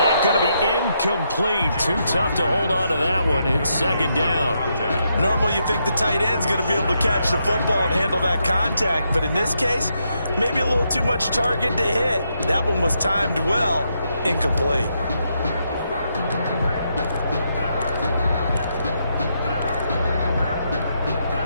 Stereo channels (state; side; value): inverted; both; correlation -0.80